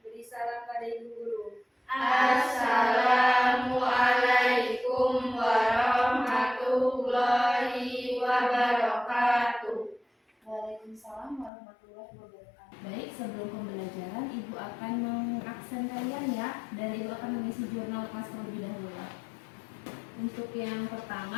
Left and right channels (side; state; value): right; drops out; at 11.5 s